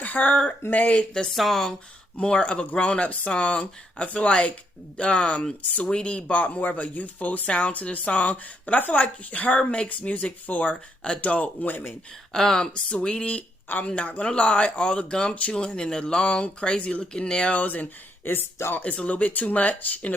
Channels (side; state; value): both; normal; correlation 0.75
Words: her made the song more of a grown-up song. I feel like Saweetie brought more of a youthful sound to the song, but I feel like her makes music for adult women. Saweetie, I'm not gonna lie, all the gum chewing and the long, crazy looking nails, and it's a little bit too much in